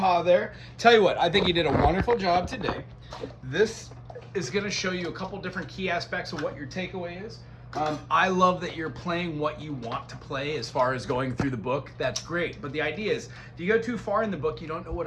there. Tell you what, I think you did a wonderful job today. This is going to show you a couple different key aspects of what your takeaway is. I love that you're playing what you want to play as far as going through the book. That's great. But the idea is, if you go too far in the book, you don't know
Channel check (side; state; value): both; identical; correlation 1.00